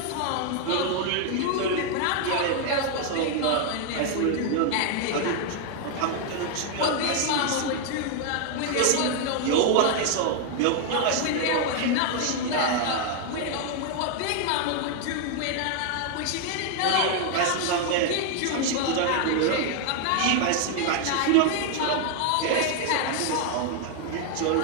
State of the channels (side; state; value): both; different; correlation 0.00